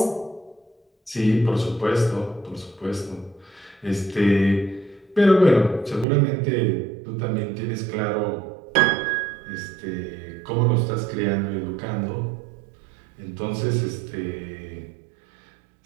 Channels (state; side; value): drops out; left; at 6.1 s